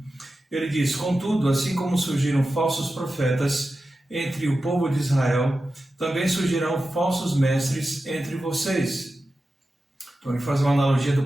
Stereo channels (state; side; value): normal; both; correlation 0.92